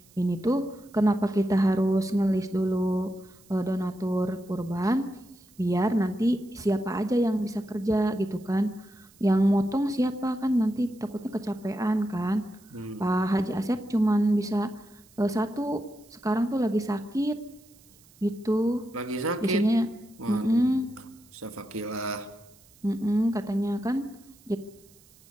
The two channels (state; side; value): noise; right; hiss, 28 dB below the sound